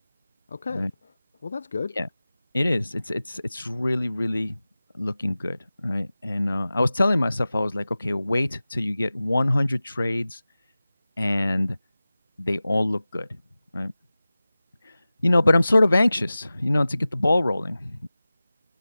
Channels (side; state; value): both; inverted; correlation -0.97